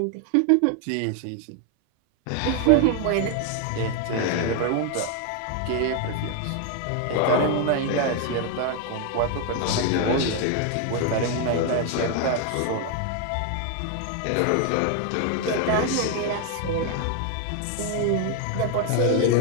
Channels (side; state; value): both; different; correlation 0.01